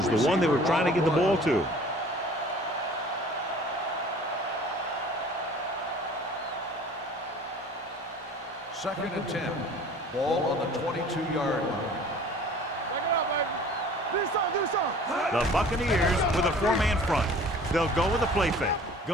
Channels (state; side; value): normal; both; correlation 0.47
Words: the one they were trying to get the ball to. Second and 10. Ball on the 22-yard line. Check it out, baby. Do something. The Buccaneers with a 4-man front. They'll go with a play fake.